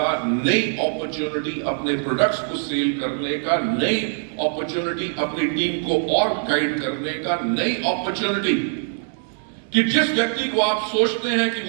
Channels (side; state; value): left; silent; digital silence